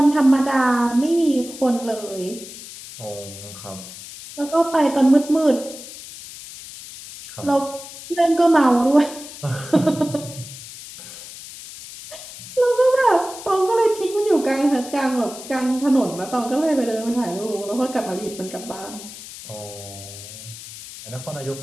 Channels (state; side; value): noise; left; hiss, 14 dB below the sound